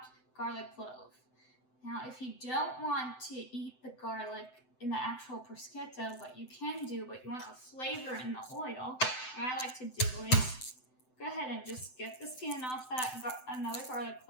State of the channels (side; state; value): right; late; 7.9 ms